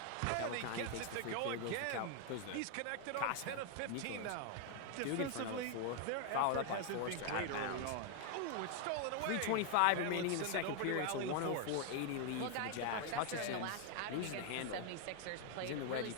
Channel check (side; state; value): both; different; correlation 0.00